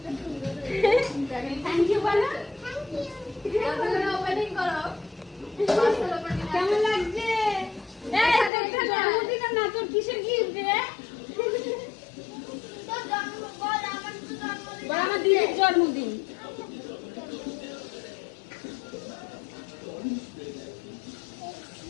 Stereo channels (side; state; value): right; drops out; at 8.5 s